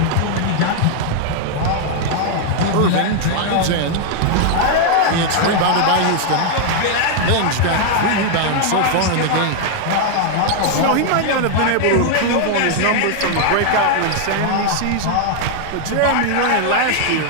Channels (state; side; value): different; both; correlation 0.00